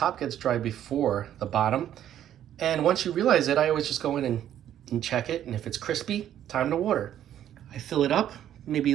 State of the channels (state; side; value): quieter; left; 11.0 dB